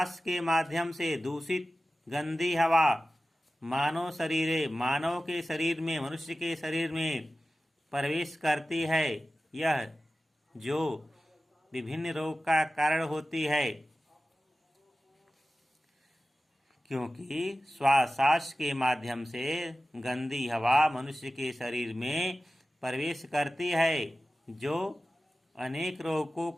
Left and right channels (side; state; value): both; normal; correlation 0.95